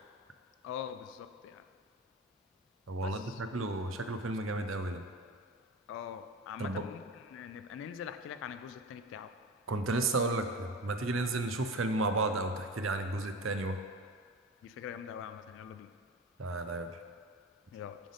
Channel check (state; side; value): normal; both; correlation 0.31